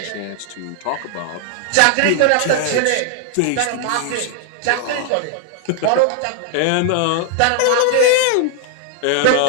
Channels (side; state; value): both; different; correlation 0.00